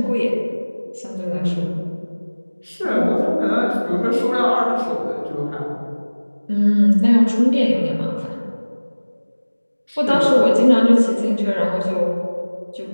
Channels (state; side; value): inverted; both; correlation -1.00